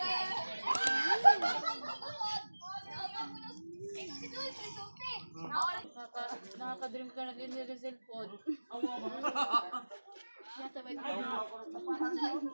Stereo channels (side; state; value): both; inverted; correlation -1.00